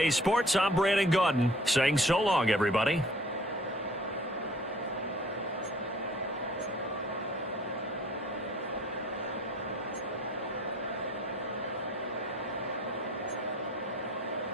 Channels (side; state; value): both; normal; correlation 0.53